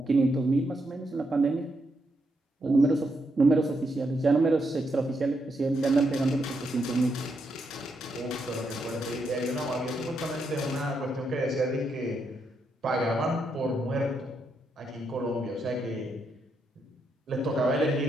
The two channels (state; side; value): normal; both; correlation 0.80